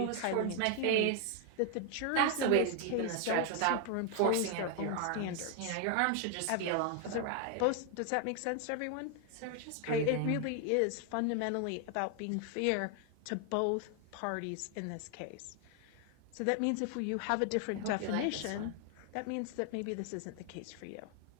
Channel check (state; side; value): different; both; correlation 0.01